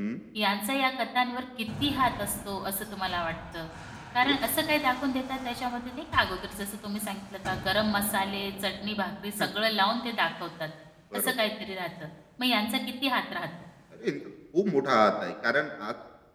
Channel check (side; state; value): both; identical; correlation 1.00